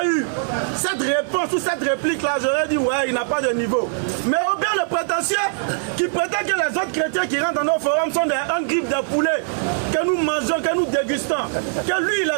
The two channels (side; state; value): left; silent; 65 dB below the other